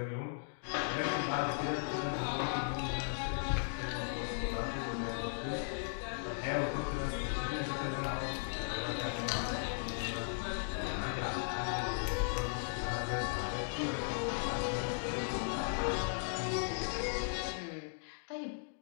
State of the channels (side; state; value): right; silent; digital silence